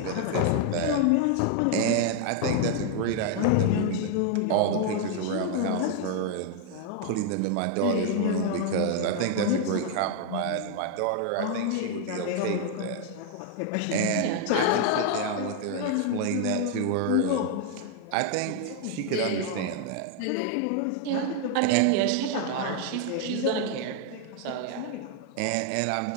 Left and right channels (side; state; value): both; different; correlation 0.00